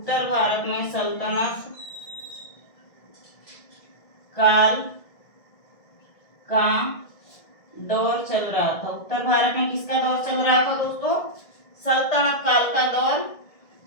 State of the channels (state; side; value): late; right; 1.7 ms